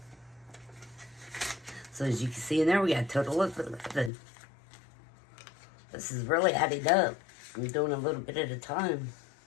So as you can see in there, we got a total of 11. This is really adding up. I'm doing a little bit at a time.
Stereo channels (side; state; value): right; drops out; at 4.1 s